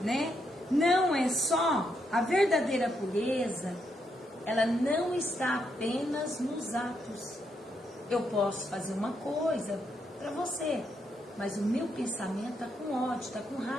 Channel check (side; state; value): both; normal; correlation 0.79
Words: né, não é só a verdadeira pureza, ela não está apenas nos atos. Eu posso fazer uma coisa para você, mas o meu pensamento está com ódio, está com